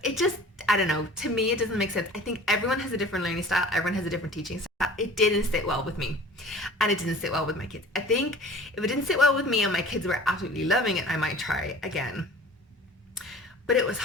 It just, I don't know, to me it doesn't make sense. I think everyone has a different learning style, everyone has a different teaching style. It didn't sit well with me, and it didn't sit well with my kids. I think if it didn't sit well with me and my kids were absolutely loving it, I might try again. But it was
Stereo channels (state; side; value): normal; both; correlation 0.44